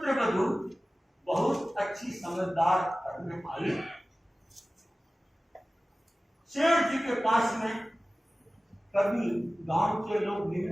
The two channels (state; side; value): normal; both; correlation 0.97